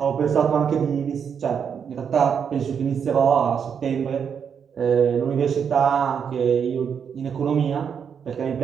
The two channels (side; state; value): left; quieter; 7.2 dB